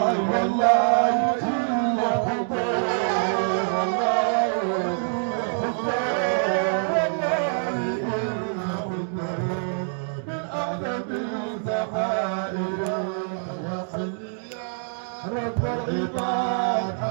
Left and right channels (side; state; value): left; silent; digital silence